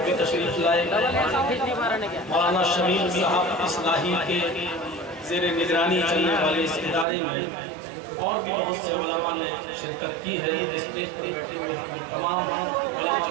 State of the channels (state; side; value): drops out; left; at 7.1 s